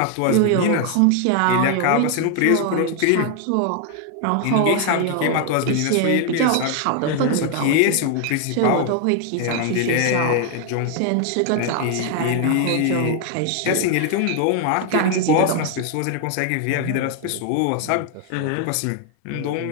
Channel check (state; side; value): different; both; correlation 0.00